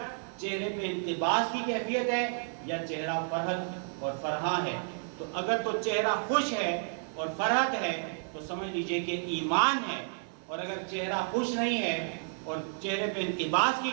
چہرے پہ التباس کی کیفیت ہے یا چہرہ فرحت اور فرحاں ہے. تو اگر تو چہرہ خوش ہے اور فرحت ہے تو سمجھ لیجئے کہ ایمان ہے. اور اگر چہرہ خوش نہیں ہے اور چہرے پہ التباس کی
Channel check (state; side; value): silent; left; 57 dB below the other